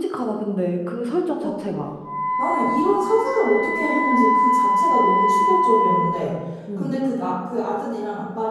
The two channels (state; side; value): identical; both; correlation 1.00